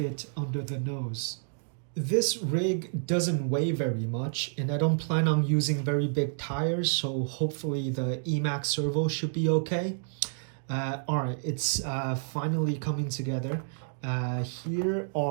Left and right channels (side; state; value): left; silent; digital silence